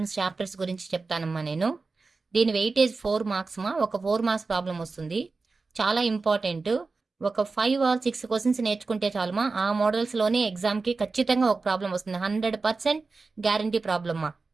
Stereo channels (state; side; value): quieter; left; 4.0 dB